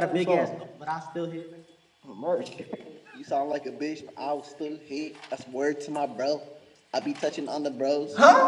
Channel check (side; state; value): both; identical; correlation 1.00